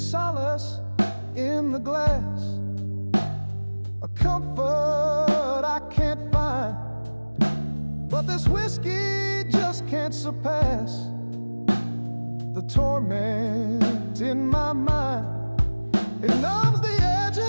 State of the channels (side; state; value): both; inverted; correlation -1.00